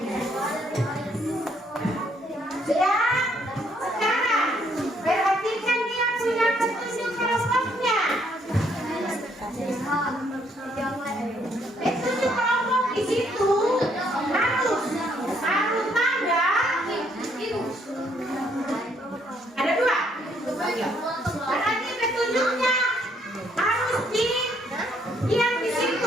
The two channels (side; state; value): both; normal; correlation 0.69